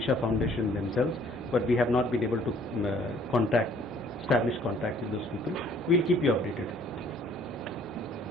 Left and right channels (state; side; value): normal; both; correlation 0.59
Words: Foundation themselves, but we have not been able to contact establish contact with those people. We'll keep you updated.